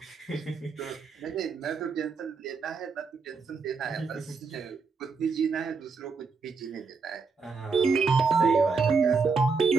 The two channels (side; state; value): left; quieter; 4.9 dB